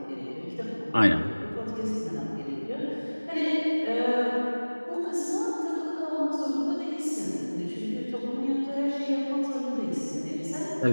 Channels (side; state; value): both; inverted; correlation -1.00